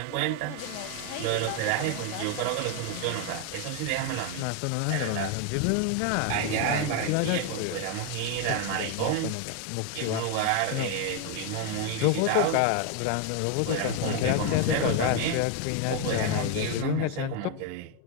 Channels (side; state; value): both; different; correlation 0.01